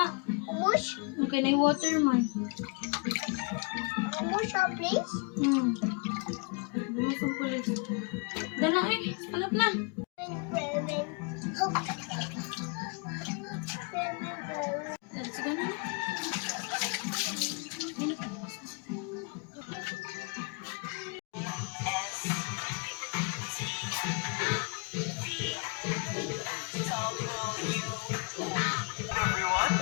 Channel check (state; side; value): quieter; right; 32.2 dB